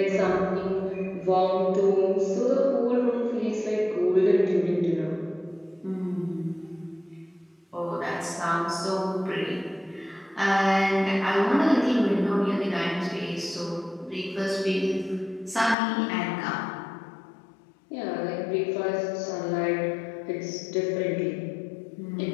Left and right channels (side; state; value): right; drops out; at 15.8 s